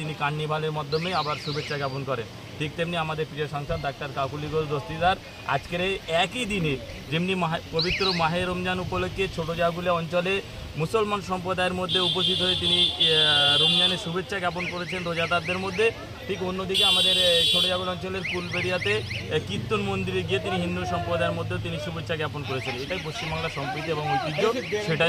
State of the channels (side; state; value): both; identical; correlation 1.00